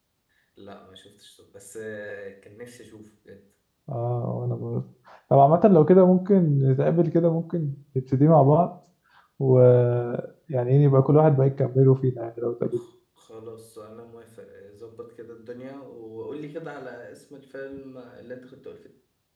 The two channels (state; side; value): identical; both; correlation 1.00